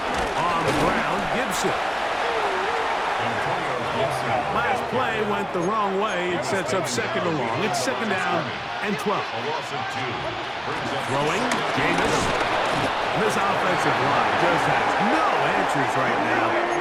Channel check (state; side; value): identical; both; correlation 1.00